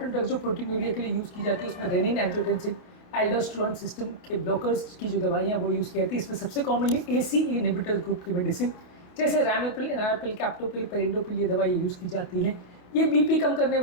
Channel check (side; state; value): right; late; 28 ms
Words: ड्रग्स जो प्रोटीनूरिया के लिए यूज़ की जाती है उसमें रेनिन, एंजियोटेंसिन, एल्डोस्टेरोन सिस्टम के ब्लॉकर्स की जो दवाइयाँ वो यूज़ की जाती है। इसमें सबसे कॉमनली ACE इनहिबिटर ग्रुप की मेडिसिन जैसे रैमोपिल, एनारपिल, कैप्टोपिल, पेरिंडोपिल ये दवाई यूज़ की जाती हैं। ये BP कम करने